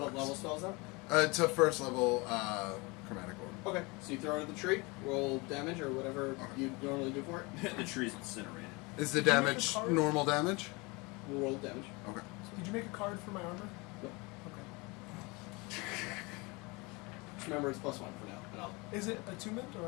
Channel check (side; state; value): right; quieter; 26.4 dB